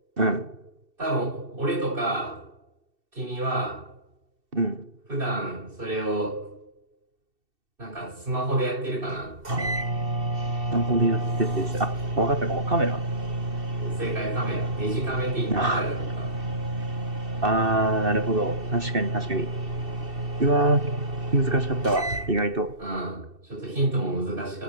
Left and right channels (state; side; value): late; left; 2.7 ms